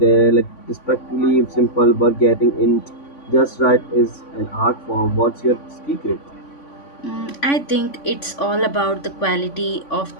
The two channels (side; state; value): right; late; 3.5 ms